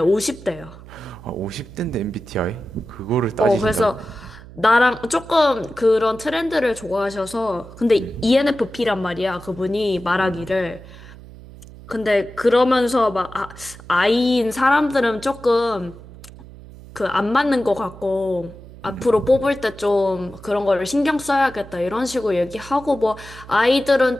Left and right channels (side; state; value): right; noise; hum, 18 dB below the sound